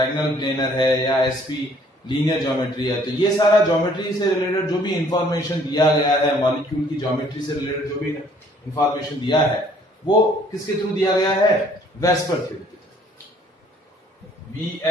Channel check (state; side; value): normal; both; correlation 0.60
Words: प्लेनर है या sp लीनियर ज्योमेट्री है। तो ये सारा ज्योमेट्री से रिलेटेड जो भी इंफॉर्मेशन दिया गया है, मॉलिक्यूल की ज्योमेट्री से रिलेटेड जो भी इंफॉर्मेशन दिया है वो किसके थ्रू दिया गया है? VSEPR theory,